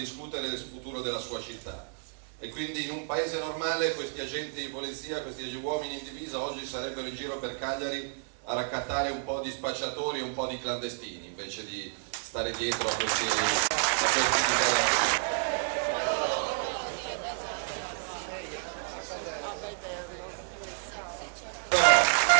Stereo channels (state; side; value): silent; left; digital silence